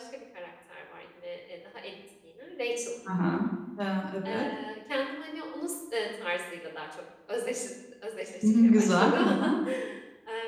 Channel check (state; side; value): identical; both; correlation 1.00